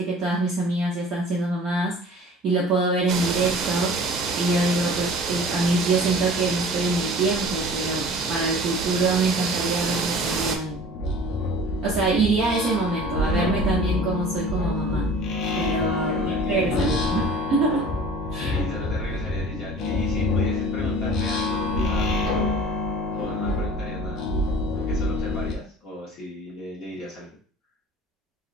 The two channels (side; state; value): both; normal; correlation 0.44